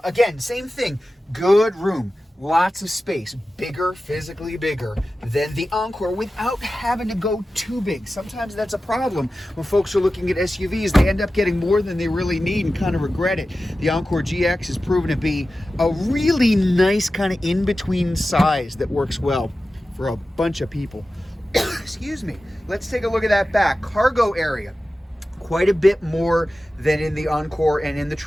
Again, same thing, good room. Lots of space, bigger, physically bigger than the Encore without having to go too big. Sometimes that's a problem when folks are looking at SUVs. They end up getting more than they really need and kind of regret it. The Encore GX has proven to be a really nice kind of in-between size that works well for a bunch of people. Excuse me. Let's take a look at that back. Cargo area. Quite a bit more than in the Encore and in the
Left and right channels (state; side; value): normal; both; correlation 0.94